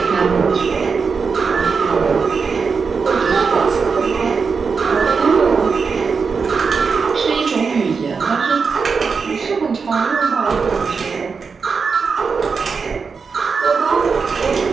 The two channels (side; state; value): left; quieter; 5.3 dB